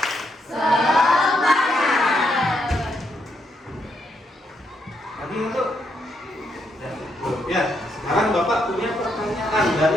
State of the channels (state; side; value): normal; both; correlation 0.78